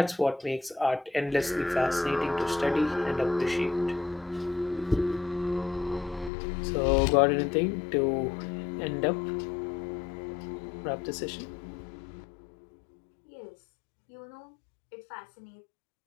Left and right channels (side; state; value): right; drops out; at 6.3 s